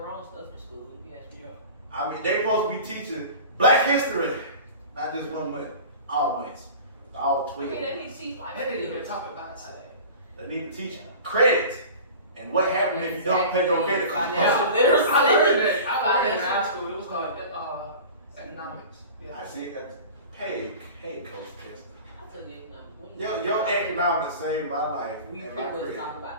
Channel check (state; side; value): inverted; both; correlation -0.38